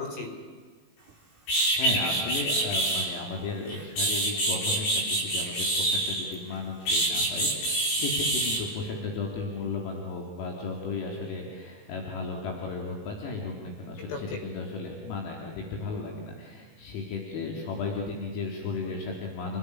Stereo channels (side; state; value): right; late; 18 ms